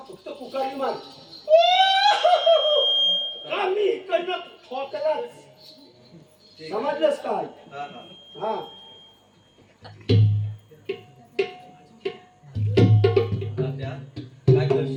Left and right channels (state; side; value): identical; both; correlation 1.00